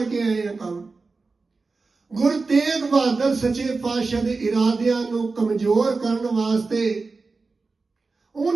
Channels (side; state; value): left; quieter; 4.0 dB